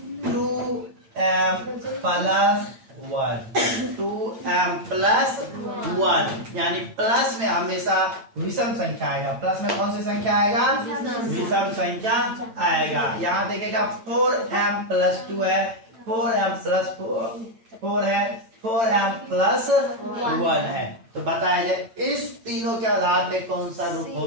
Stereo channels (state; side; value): late; left; 8.9 ms